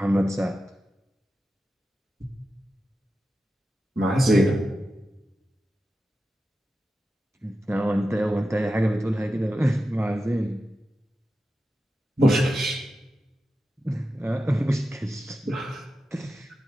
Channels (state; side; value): normal; both; correlation 0.91